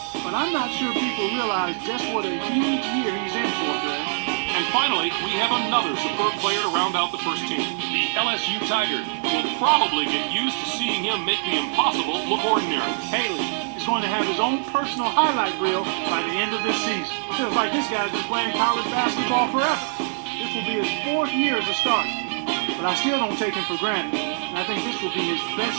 but I'm not sure people realize just what a huge year he's in for, Greg. And finally, we have another superb player to round out the first team. The LSU Tigers will probably get used to seeing him make the impossible look ordinary. Haley is going to have his own personal highlight reel by the end of this season. Feels like this guy's been playing college basketball forever. This will be his 4th year as a starter. But I still don't take him for granted. And I think this will be his best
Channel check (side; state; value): left; silent; digital silence